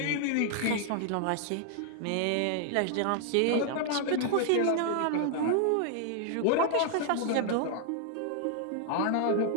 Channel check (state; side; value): different; both; correlation 0.00